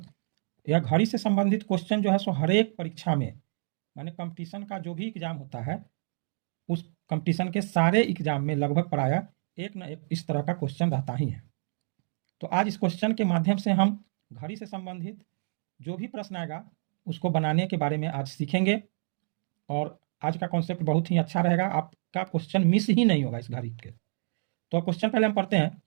यह घड़ी से संबंधित क्वेश्चन जो है सो हर एक परीक्षा में, माने कंपटीशन का जो भी एग्जाम होता है उस कंपटीशन के सारे एग्जाम में लगभग प्रायः एक न एक इस तरह का क्वेश्चन रहता ही है। तो आज इस क्वेश्चन के माध्यम से हम घड़ी से संबंधित जो भी प्रश्न आएगा उसको बनाने के बारे में आज सीखेंगे और आज का कॉन्सेप्ट बहुत ही अच्छा रहेगा, आपका क्वेश्चन मिस ही नहीं होगा इस घड़ी के। तो क्वेश्चन पहले हम पढ़ते हैं।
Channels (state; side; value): silent; left; digital silence